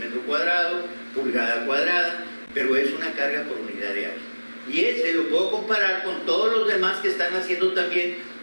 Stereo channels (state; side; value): inverted; both; correlation -1.00